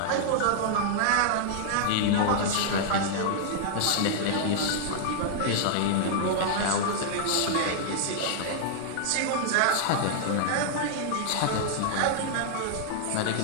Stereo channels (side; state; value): both; different; correlation -0.01